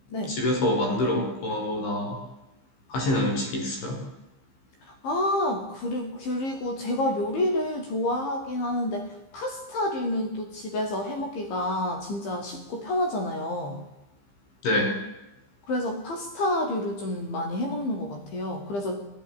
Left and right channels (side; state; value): right; late; 15 ms